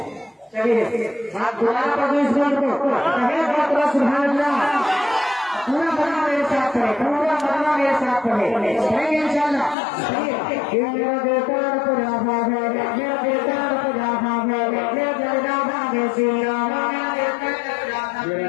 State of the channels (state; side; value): drops out; right; at 9.8 s